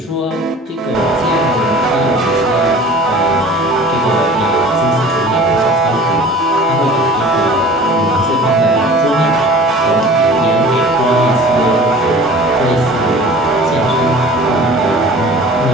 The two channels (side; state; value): both; normal; correlation 0.43